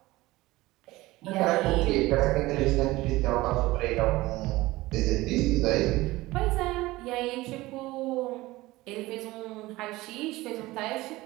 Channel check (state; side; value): quieter; left; 19.1 dB